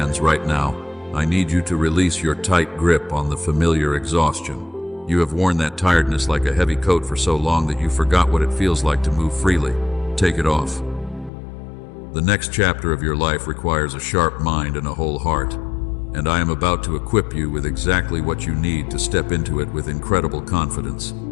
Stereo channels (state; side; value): drops out; right; at 11.3 s